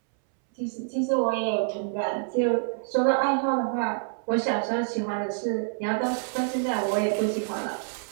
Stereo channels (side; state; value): left; silent; 60 dB below the other